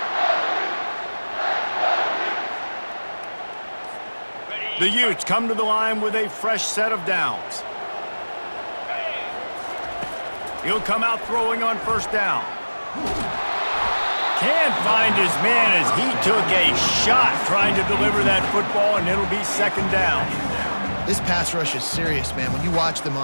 The Utes come to the line with a fresh set of downs. He'll come out throwing on first down. Can't find his man as he took a shot trying to deliver that football, and it'll be 2nd down. This pass rush is serious, man. When you watch them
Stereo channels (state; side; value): inverted; both; correlation -1.00